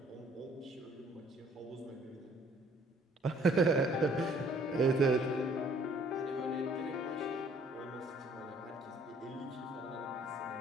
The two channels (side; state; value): both; normal; correlation 0.59